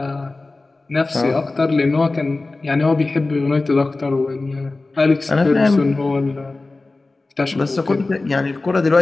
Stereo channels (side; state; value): right; quieter; 3.3 dB